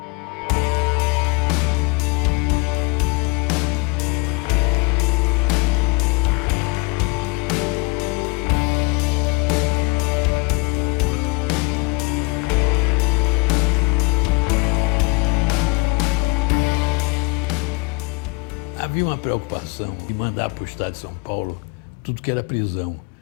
Havia uma preocupação de mandar para o estado de São Paulo tudo que era prisão,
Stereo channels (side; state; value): right; quieter; 27.9 dB